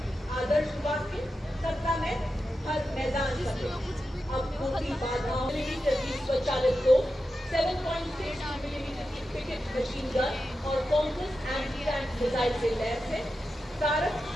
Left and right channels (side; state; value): both; normal; correlation 0.90